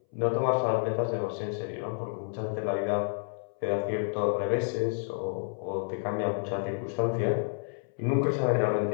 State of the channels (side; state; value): right; silent; 58 dB below the other